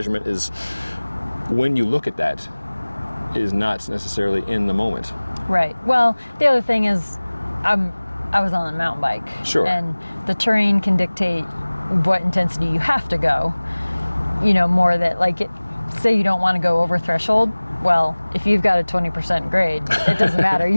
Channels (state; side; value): inverted; both; correlation -1.00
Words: is, when you look at that, is not necessarily in the moment. Right. Well, the other thing is I was on a mountain bike. Sure. And the terrain can dictate what intensity you have to go, more that say you don't want to go over threshold. Well, if you've got a 20% grade, it doesn't matter.